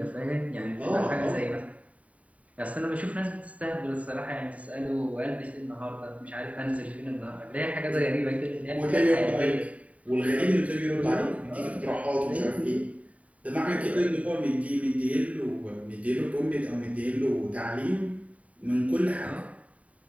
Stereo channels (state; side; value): late; left; 0.068 ms